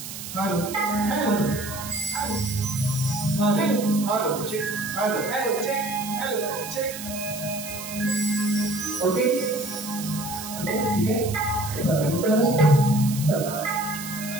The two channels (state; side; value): noise; right; hiss, 10 dB below the sound